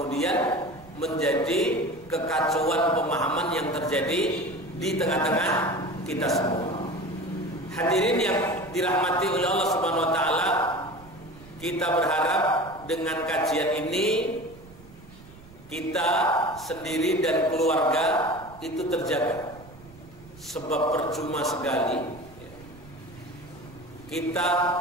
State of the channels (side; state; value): right; noise; rumble, 21 dB below the sound